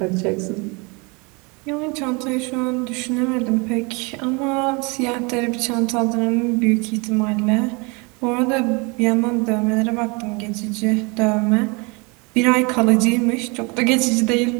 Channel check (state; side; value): quieter; left; 29.3 dB